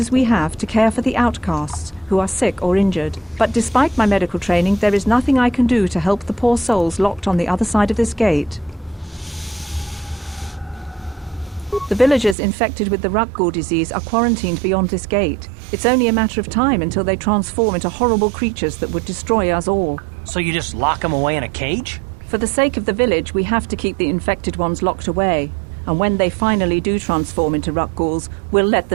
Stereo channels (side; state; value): left; drops out; at 12.4 s